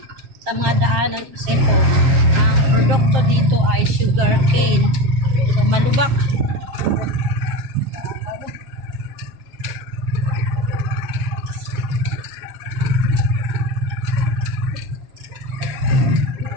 sa mga daanan kasi po ang produkto dito ay sugar cane. So malubak.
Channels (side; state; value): left; late; 7.6 ms